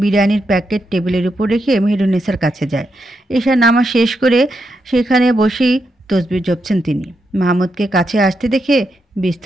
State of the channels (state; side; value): normal; both; correlation 0.83